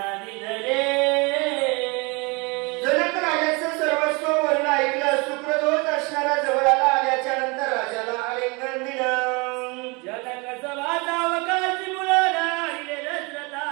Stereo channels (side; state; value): left; quieter; 28.6 dB